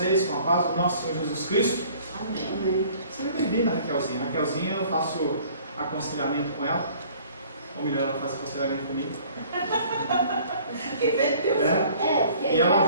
com a paz do nosso Senhor Jesus Cristo. Amém. Seja bem-vinda, Raquelzinha. Raquelzinha, eu faço aconselhamento com ela. Ou melhor, ela faz aconselhamento comigo. E ela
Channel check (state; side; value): inverted; both; correlation -0.53